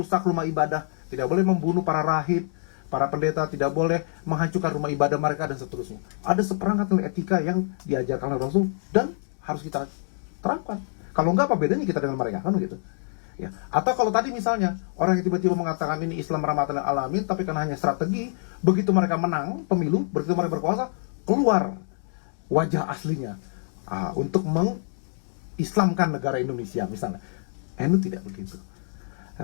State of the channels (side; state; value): right; silent; digital silence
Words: rumah ibadah, tidak boleh membunuh para rahib, para pendeta, tidak boleh menghancurkan rumah ibadah mereka dan seterusnya. Ada seperangkat nilai etika yang diajarkan oleh Rasul dan harus kita terapkan. Kalau enggak, apa bedanya kita dengan mereka, kan gitu. Ya. Atau kalau tadi misalnya orang yang tiba-tiba mengatakan ini Islam rahmatan lil alamin, tapi karena hanya strategi, begitu mereka menang pemilu, begitu mereka berkuasa, keluar wajah aslinya untuk mengislamkan negara Indonesia misalnya. NU tidak begitu.